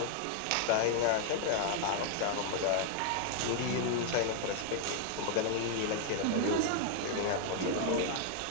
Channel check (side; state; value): both; different; correlation 0.00